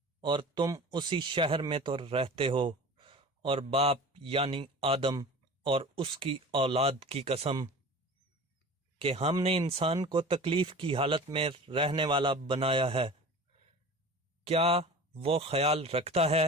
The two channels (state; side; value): normal; both; correlation 0.37